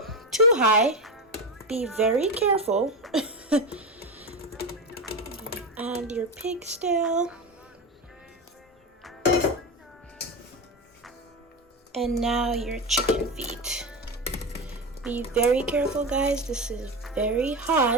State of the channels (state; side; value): normal; both; correlation 0.17